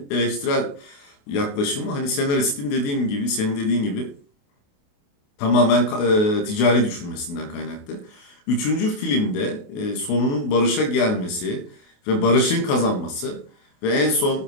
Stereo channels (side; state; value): right; late; 28 ms